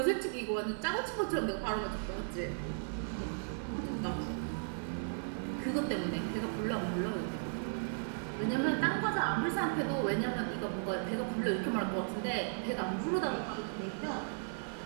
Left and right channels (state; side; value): silent; left; 54 dB below the other